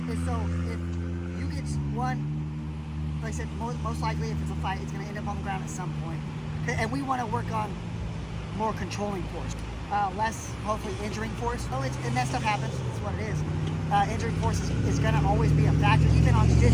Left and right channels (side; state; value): both; identical; correlation 1.00